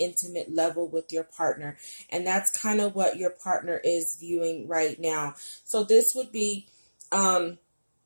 level with your partner? And that's kind of what your partner is viewing right now. So this would be a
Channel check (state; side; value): inverted; both; correlation -1.00